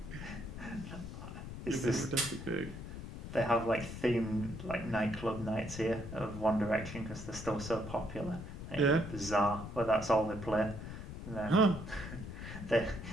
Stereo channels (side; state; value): left; noise; rumble, 9 dB below the sound